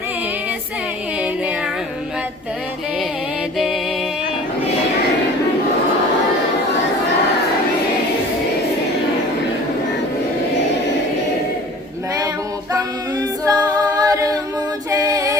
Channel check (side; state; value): both; normal; correlation 0.45